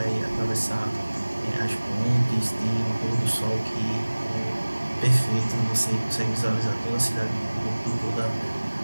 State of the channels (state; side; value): inverted; both; correlation -1.00